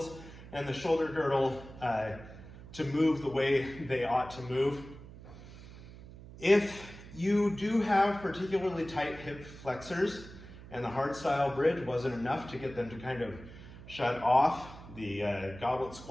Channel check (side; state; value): right; noise; hum, 16 dB below the sound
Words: and the shoulder girdle to move the way they ought to move. If you do have particularly tight hip flexors, and the hardstyle bridge wasn't enough to get them to kind of shut off. The goblet